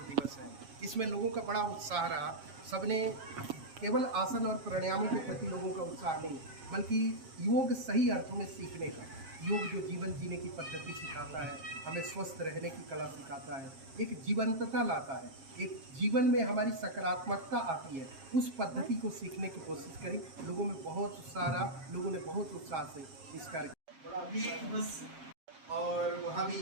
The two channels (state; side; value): late; left; 7.5 ms